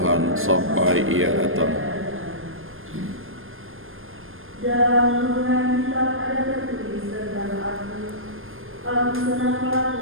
sampai Ia datang. Dalam hubungan kitab ada tertulis tentang aku senang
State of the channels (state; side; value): late; left; 0.60 ms